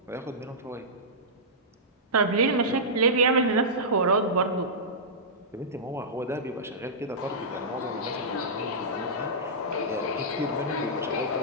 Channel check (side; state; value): both; normal; correlation -0.14